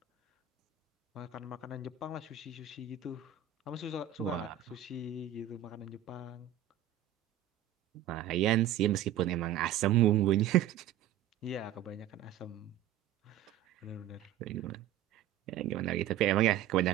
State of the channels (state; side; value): quieter; left; 10.5 dB